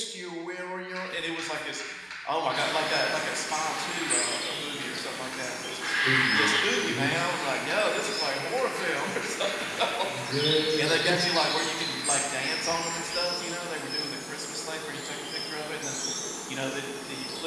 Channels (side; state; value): both; identical; correlation 1.00